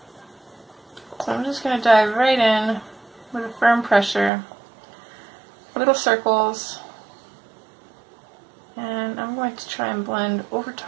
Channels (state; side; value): drops out; left; at 4.3 s